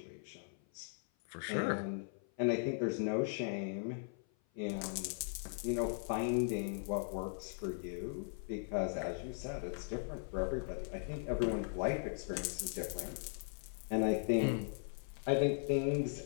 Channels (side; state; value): right; silent; 52 dB below the other